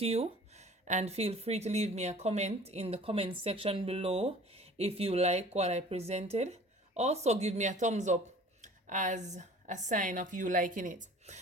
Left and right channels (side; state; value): both; normal; correlation 0.47